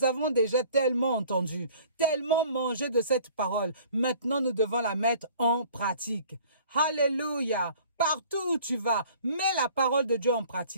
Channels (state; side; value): inverted; both; correlation -0.51